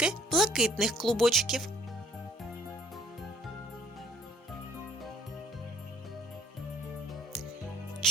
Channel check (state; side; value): normal; both; correlation 0.60